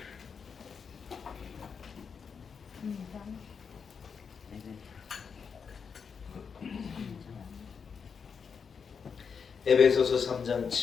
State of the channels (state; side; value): quieter; right; 6.1 dB